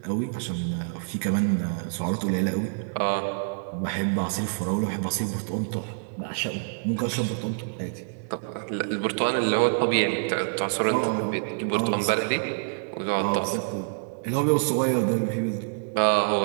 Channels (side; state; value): left; silent; digital silence